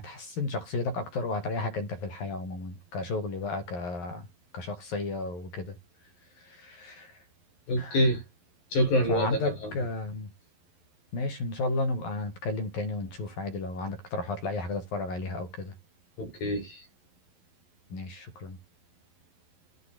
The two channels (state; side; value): late; right; 11 ms